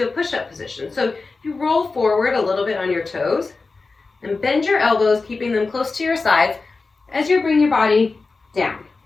a push-up position. So you roll forward a little bit on your toes and bend your elbows, keeping them close to your sides as you bring your body down.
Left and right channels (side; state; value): right; quieter; 4.0 dB